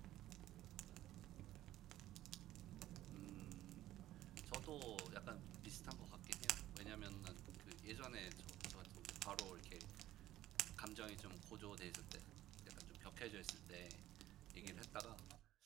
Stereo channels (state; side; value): quieter; left; 14.2 dB